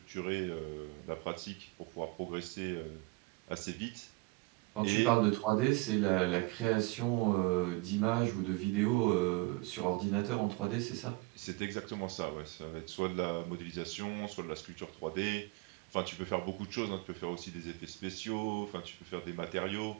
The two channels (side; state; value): left; quieter; 24.8 dB